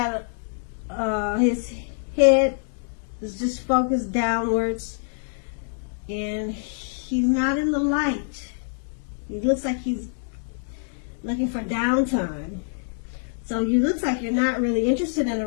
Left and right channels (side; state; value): right; silent; digital silence